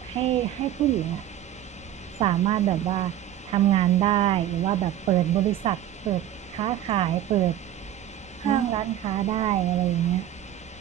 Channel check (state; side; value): quieter; left; 11.8 dB